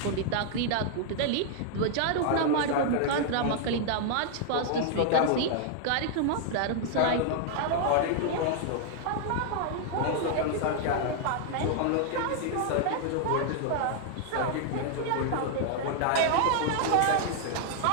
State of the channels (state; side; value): different; both; correlation 0.00